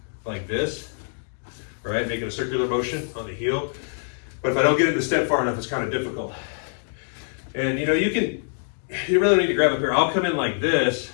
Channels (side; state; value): right; silent; digital silence